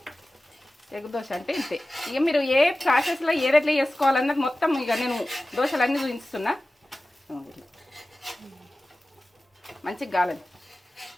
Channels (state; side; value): normal; both; correlation 0.95